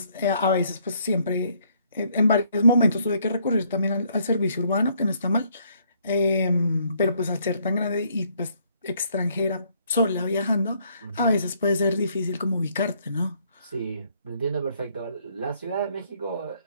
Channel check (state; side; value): inverted; both; correlation -0.68